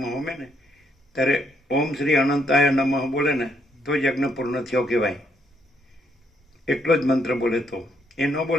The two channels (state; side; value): normal; both; correlation 0.73